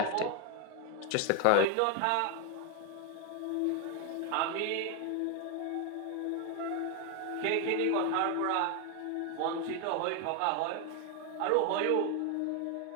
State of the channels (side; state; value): both; different; correlation 0.01